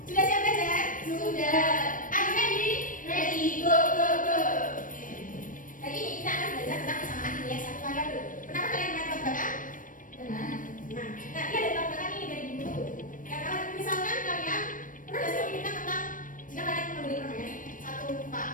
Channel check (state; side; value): late; right; 0.38 ms